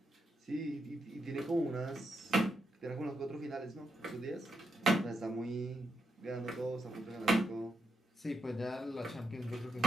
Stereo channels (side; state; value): both; normal; correlation 0.82